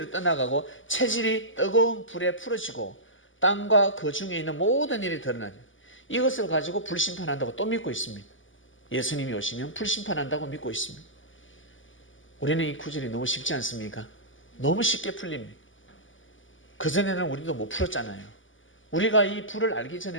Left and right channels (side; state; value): right; late; 0.57 ms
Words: 떠나가고 체질이 뜨거운 불에 풀어지고 땅과 그 중에 있는 모든 일이 드러나니 이것을 가지고 불심판한다고 또 믿고 있습니다. 예수님이 오시면 불심판한다고 믿고 있습니다. 우리는 이 구절이 너무 쉽지 않습니까? 너무 쉽게 풀립니다. 그전에는 우리도 못 풀었잖아요. 우리가 이 불을 알기